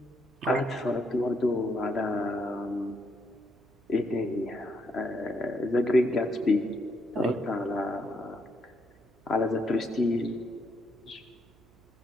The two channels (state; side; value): noise; right; hum, 28 dB below the sound